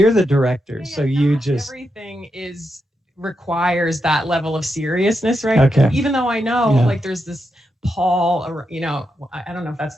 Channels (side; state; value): both; normal; correlation 0.85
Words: the director, so you just. Everything requires that level of seriousness, right? Okay. Even though I know, there's this pall, I don't know if that's